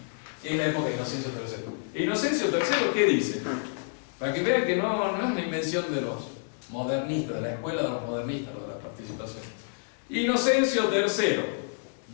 es la época de Inocencio III. ¿Inocencio III qué dice? Para que vean que no es una invención de los modernistas, de la escuela de los modernistas, lo de la participación. Inocencio III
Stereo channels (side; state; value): right; silent; digital silence